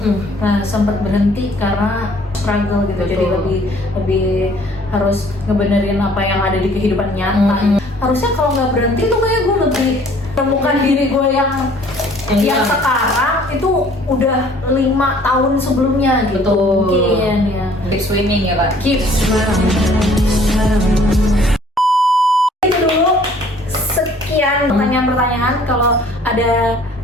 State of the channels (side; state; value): both; normal; correlation 0.56